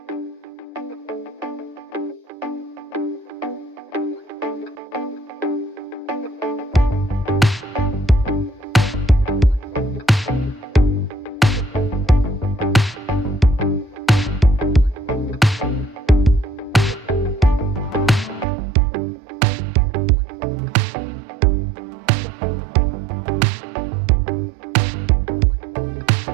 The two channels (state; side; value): drops out; left; at 18.4 s